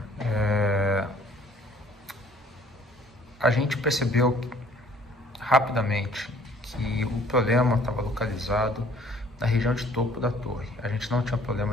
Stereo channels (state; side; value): normal; both; correlation 0.56